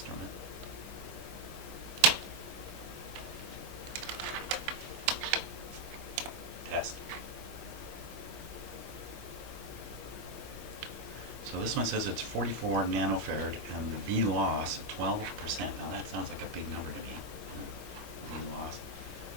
Test. So this one says it's 44 nanofarad and the V loss 12%. Now that sounds like a big number to me. V loss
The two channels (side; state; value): left; late; 19 ms